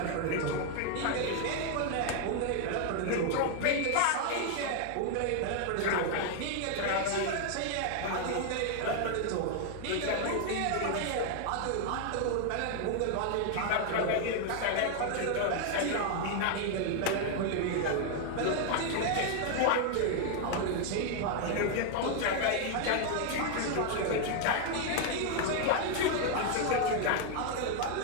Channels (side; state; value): both; different; correlation 0.00